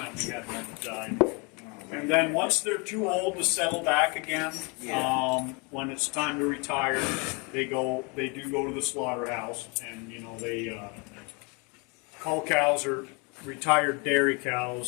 we had one that died. And then once they're too old to settle back again, when it's time to retire, they do go to the slaughterhouse, and you know cull cows are retired dairy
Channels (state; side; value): quieter; right; 31.3 dB